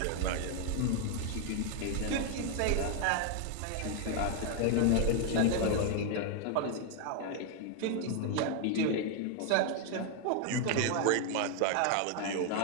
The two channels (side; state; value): both; different; correlation 0.00